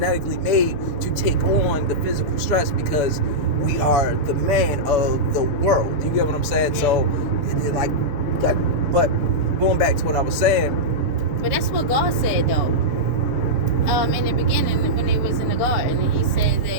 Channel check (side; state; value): right; late; 7.0 ms